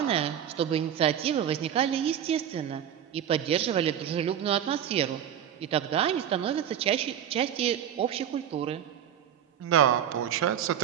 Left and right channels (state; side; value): quieter; left; 9.7 dB